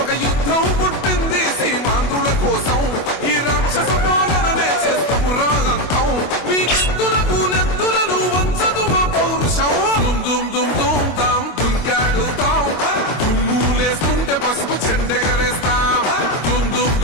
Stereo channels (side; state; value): right; late; 25 ms